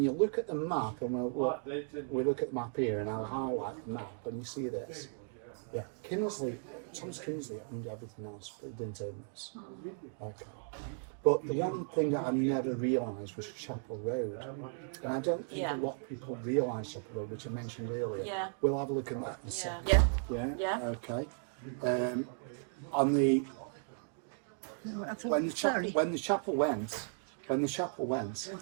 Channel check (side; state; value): left; silent; 54 dB below the other